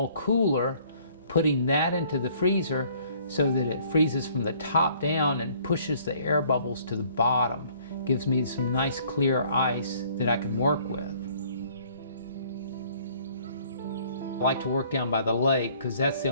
cooler, putting that into the freezer so that it freezes from the top down and pushes the air bubbles to the bottom. Gives me some nice clear ice that I can work with. I like to work down by the lake because that's the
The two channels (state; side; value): inverted; both; correlation -0.59